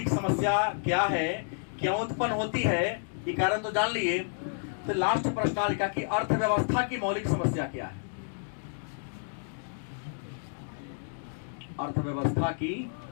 समस्या क्या है, क्यों उत्पन्न होती है, ये कारण तो जान लिए। तो लास्ट प्रश्न लिखा कि अर्थव्यवस्था की मौलिक समस्या क्या है। अर्थव्यवस्था की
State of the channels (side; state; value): right; silent; digital silence